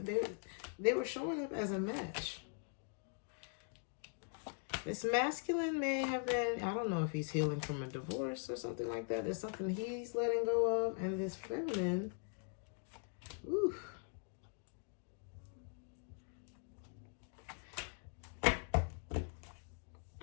were showing up as a match. This masculine may have been, I don't know if he's healing from a divorce or something like that. There's something he's letting go of. And this feminine, ooh.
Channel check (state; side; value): silent; right; 50 dB below the other